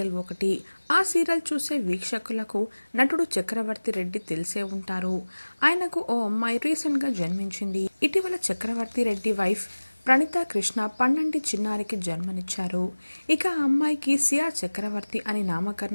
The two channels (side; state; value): both; inverted; correlation -1.00